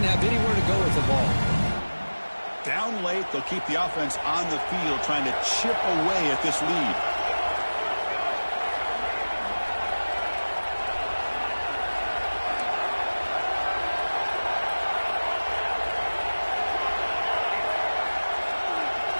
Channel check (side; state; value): both; inverted; correlation -1.00